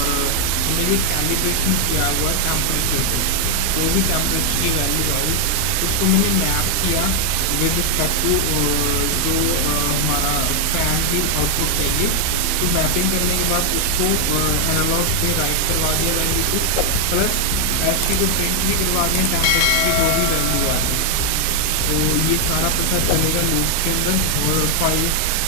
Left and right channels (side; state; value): both; different; correlation 0.00